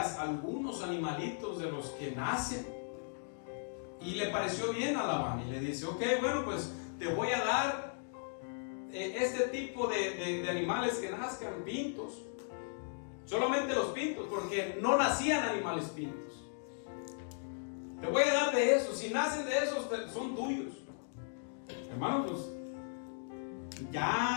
algunos animalitos de los que nacen. Y le pareció bien a Labán y le dice, ok, bueno, pues te voy a dar este tipo de animales que nazcan, pintos. Solamente los pintos, porque no nacían animales pintos. Te voy a dar de esos. Si nacen de esos, son tuyos. Hermanos, pues,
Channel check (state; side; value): silent; right; digital silence